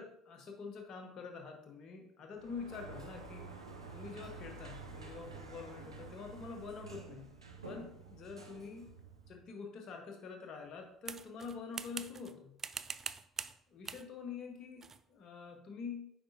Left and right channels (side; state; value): both; normal; correlation 0.36